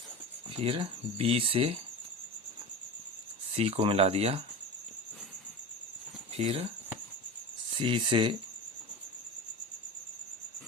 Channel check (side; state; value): both; normal; correlation 0.29